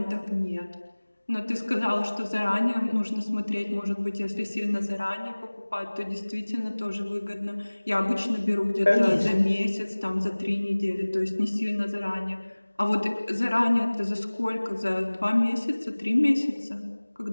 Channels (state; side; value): inverted; both; correlation -1.00